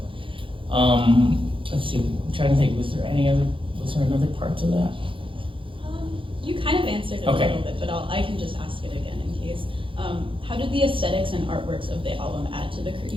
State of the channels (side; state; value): left; late; 0.25 ms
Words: let's see. I'm trying to think. Was there another part to that? You kind of answered it a little bit, but I can just ask it again in case. How did the aesthetics and artworks of the album add to the